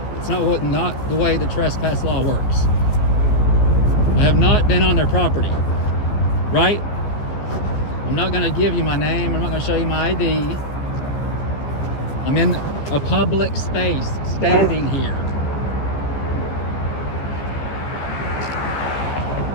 It's not the way the trespass law works. I have not been on their property, right? I'm not going to give you my name. I'm not going to show you my ID. I'm in a public space, standing here.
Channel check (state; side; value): late; right; 14 ms